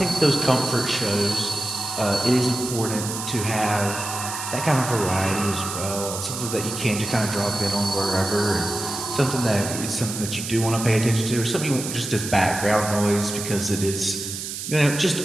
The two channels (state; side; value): noise; right; hiss, 6 dB below the sound